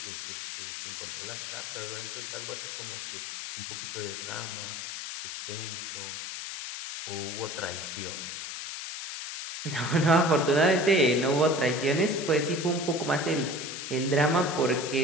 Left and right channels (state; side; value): noise; left; hiss, 7 dB below the sound